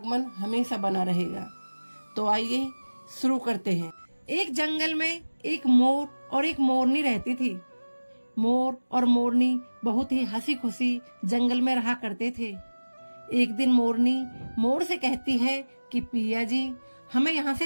हमेशा बना रहेगा। तो आइए शुरू करते हैं। एक जंगल में एक मोर और एक मोरनी रहती थी। मोर और मोरनी बहुत ही हंसी खुशी जंगल में रहा करते थे। एक दिन मोरनी मोर से कहती है कि पिया जी, हमें यहाँ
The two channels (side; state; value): both; inverted; correlation -1.00